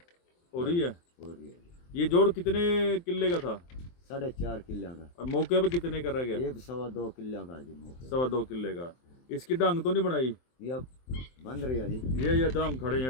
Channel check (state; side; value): late; right; 23 ms